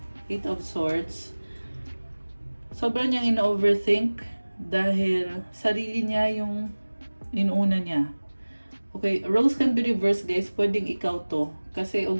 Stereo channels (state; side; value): inverted; both; correlation -1.00